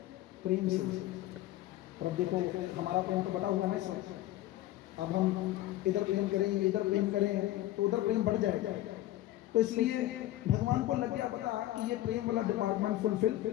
प्रेम से। और अब देखो हमारा प्रेम तो बटा हुआ है ना इस वक्त। अब हम इधर प्रेम करें, इधर प्रेम करें तो उधर प्रेम बढ़ जाएगा। तो इसलिए भगवान को लग गया पता कि ये प्रेम वाला डिपार्टमेंट फुलफिल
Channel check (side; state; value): right; quieter; 15.1 dB